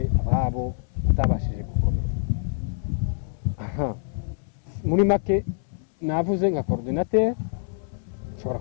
ababo batabashije gukomeza. Muri make navuze nka coordinateur, shobora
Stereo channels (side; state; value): right; silent; 61 dB below the other